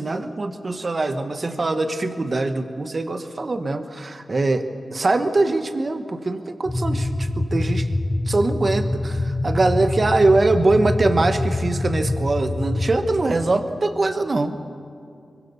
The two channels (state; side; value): normal; both; correlation 0.96